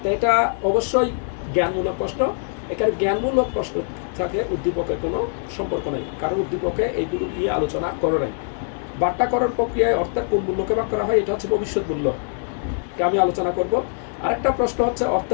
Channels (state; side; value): silent; right; digital silence